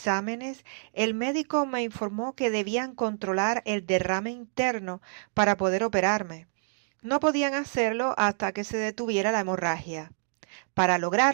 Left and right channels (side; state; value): left; silent; digital silence